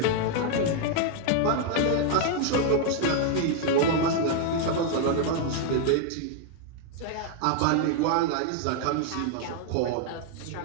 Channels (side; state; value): both; different; correlation 0.00